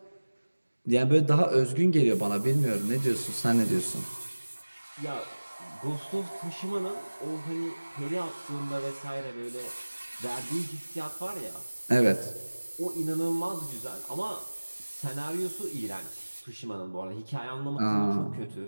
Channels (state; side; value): inverted; both; correlation -1.00